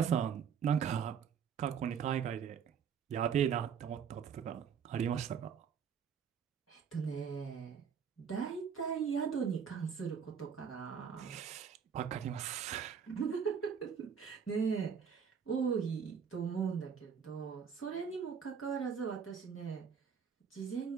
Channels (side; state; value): left; quieter; 7.2 dB